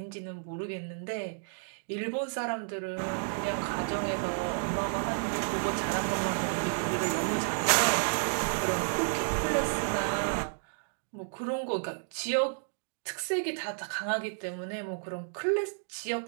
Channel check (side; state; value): left; silent; digital silence